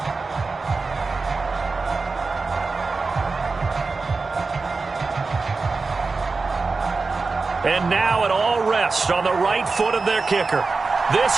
And now it all rests on the right foot of their kicker.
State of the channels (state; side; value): quieter; left; 4.1 dB